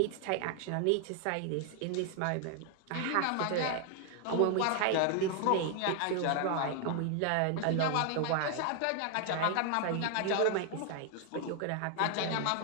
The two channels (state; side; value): different; both; correlation 0.00